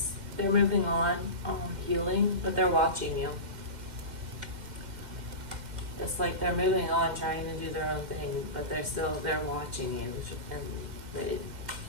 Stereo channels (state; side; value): late; left; 2.1 ms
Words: they're moving on, healing, but they're watching you. It's like they're moving on, trying to do their own thing, but they're watching you, and